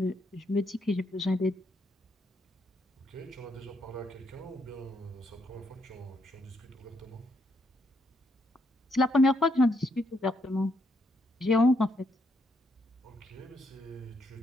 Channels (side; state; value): both; normal; correlation 0.76